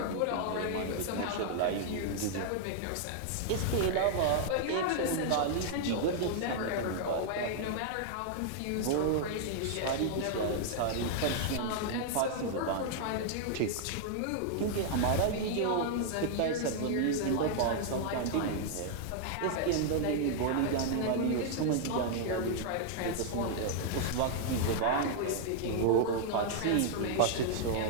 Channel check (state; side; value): different; both; correlation 0.00